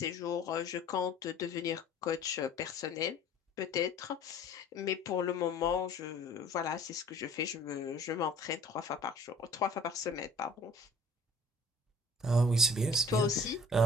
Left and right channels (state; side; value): normal; both; correlation 0.50